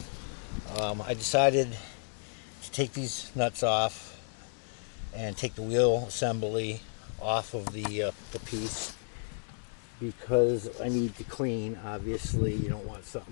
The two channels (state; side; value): silent; right; digital silence